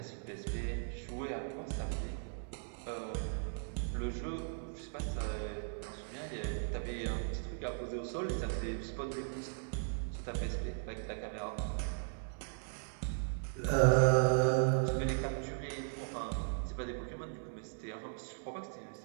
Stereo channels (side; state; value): left; silent; digital silence